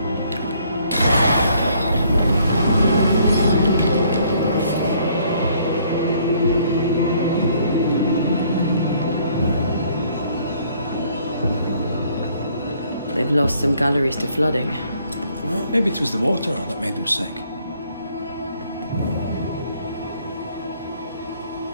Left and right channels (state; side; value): inverted; both; correlation -0.64